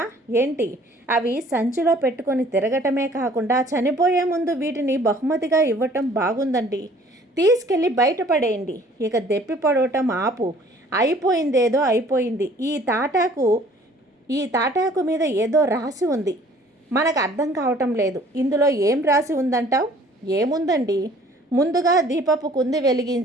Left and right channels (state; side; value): normal; both; correlation 0.55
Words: ఏంటి? అవి సంచిలో పెట్టుకొని తిరగటమే కాకుండా చనిపోయే ముందు వీటిని బహుమతిగా ఇవ్వటం బాగుందండి. తీసుకెళ్ళి బయటపడేయండి. ఇక దెప్పి పడవటం ఆపు. అయిపోయిందేదో అయిపోయింది. ఈ తాటాకు మీద ఏదో రాసి ఉంది. మనకు అర్థం కావటం లేదు. ఇందులో ఏం రాసి ఉందంటావు? ఏముందండి, ముందుగా దీపపు కుంది